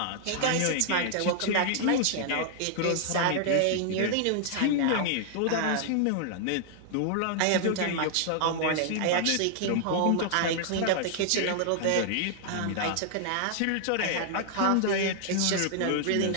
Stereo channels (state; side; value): different; both; correlation 0.00